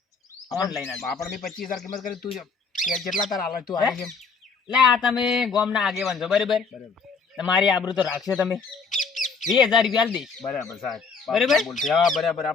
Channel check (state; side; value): quieter; right; 5.0 dB